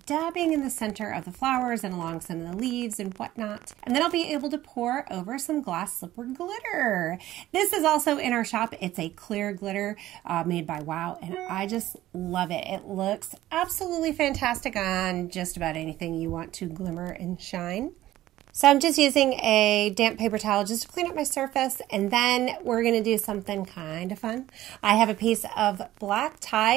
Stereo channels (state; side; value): quieter; left; 14.7 dB